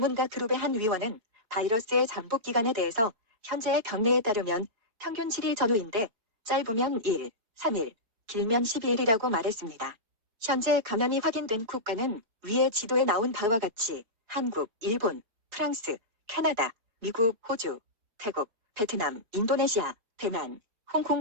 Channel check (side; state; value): left; late; 4.6 ms